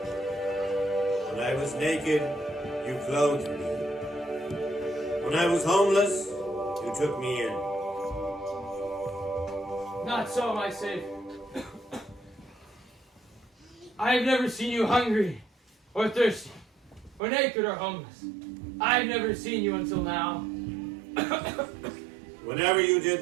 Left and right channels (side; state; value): left; drops out; at 17.2 s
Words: When I was naked, you clothed me. When I was homeless, you took me in. Not so, my Savior. I have never seen you hungry, or thirsty, or naked, or homeless. I have never seen you until now. Whenever you